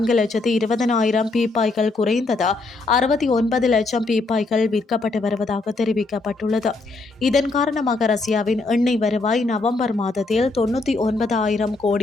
பீப்பாய்கள் குறைந்தது 69 லட்சம் பீப்பாய்கள் விற்கப்பட்டு வருவதாக தெரிவிக்கப்பட்டுள்ளது. இதன் காரணமாக ரஷ்யாவின் எண்ணெய் வருவாய் நவம்பர் மாதத்தில் 99,000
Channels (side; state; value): right; quieter; 3.4 dB